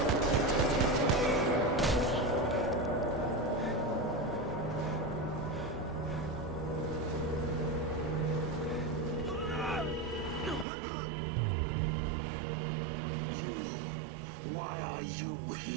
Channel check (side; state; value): left; drops out; at 10.7 s